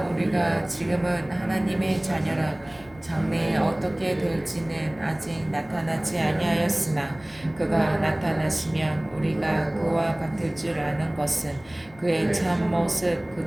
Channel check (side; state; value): left; noise; rumble, 25 dB below the sound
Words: 우리가 지금은 하나님의 자녀라. 장래에 어떻게 될지는 아직 나타나지 아니하였으나 그가 나타나시면 우리가 그와 같을 줄 아는 것은 그의 참 모습